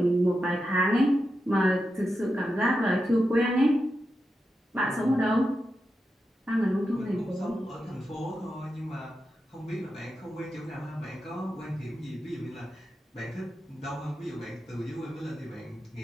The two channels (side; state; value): both; normal; correlation 0.89